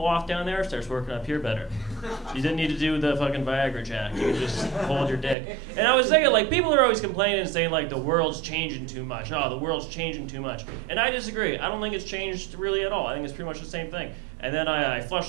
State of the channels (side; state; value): left; drops out; at 5.4 s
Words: off down there, it starts working up here better. You didn't need to do the fucking Viagra, Jack. You can just hold your dick. And I was thinking, like, people are always complaining and saying, like, the world's changing too much. Oh, the world's changing too much. And I disagree. I don't think it's changed really at all. I think it's pretty much the same thing. And then I flushed